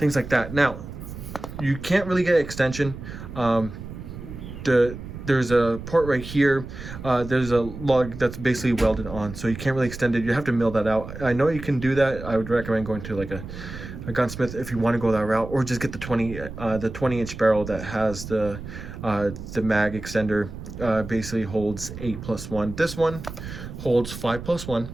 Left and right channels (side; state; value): right; noise; rumble, 11 dB below the sound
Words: like that. Now you can't really get extension. There's a port right here. There's a lug that's basically welded on, so you can't really extend it. You have to mill that out. I know you can do that. I would recommend going to like a gunsmith if you want to go that route, or just get the 20 inch barrel that has the mag extender. Basically holds 8+1. This one holds 5+1.